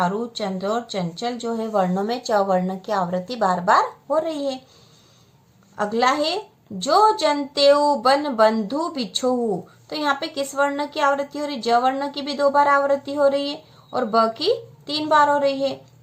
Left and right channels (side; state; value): both; identical; correlation 1.00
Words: चंद्र और चंचल जो है वर्णों में च वर्ण की आवृत्ति बार बार हो रही है। अगला है जो जनतेऊ बन बंधु बिछोहू। तो यहाँ पे किस वर्ण की आवृत्ति हो रही है? ज वर्ण की भी 2 बार आवृत्ति हो रही है और ब की 3 बार हो रही है।